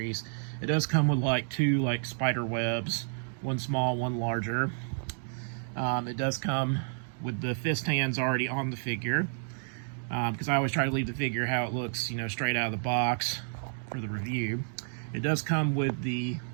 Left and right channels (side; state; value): left; silent; digital silence